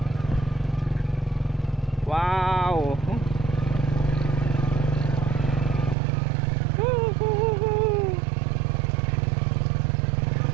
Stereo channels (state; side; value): drops out; left; at 6.0 s